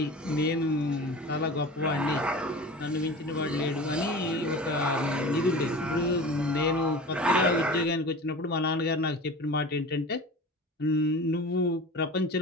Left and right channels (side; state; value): both; normal; correlation 0.35